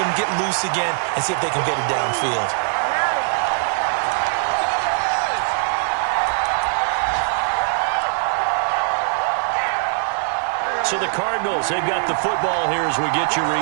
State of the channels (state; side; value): silent; left; digital silence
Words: get loose again, and see if they can get it downfield. So the Cardinals, they've got the football here as we get you